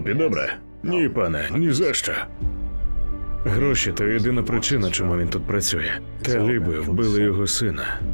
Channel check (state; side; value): inverted; both; correlation -1.00